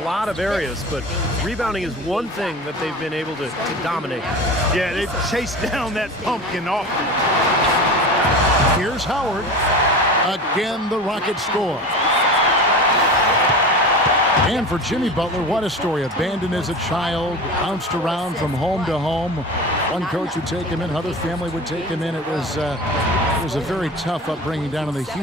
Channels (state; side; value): normal; both; correlation 0.32